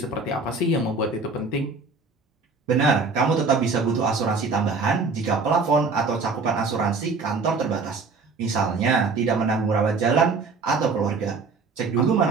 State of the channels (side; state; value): left; quieter; 4.2 dB